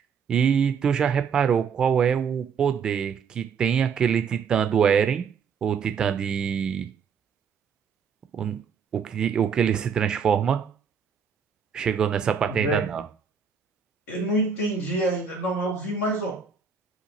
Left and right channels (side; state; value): left; quieter; 6.4 dB